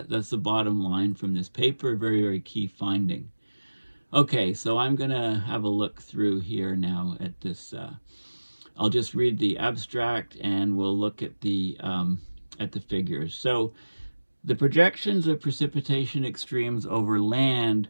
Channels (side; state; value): both; inverted; correlation -1.00